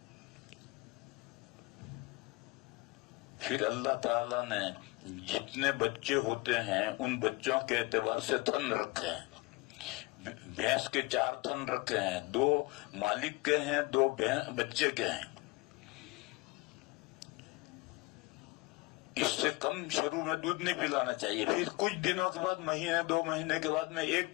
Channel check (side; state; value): right; quieter; 23.8 dB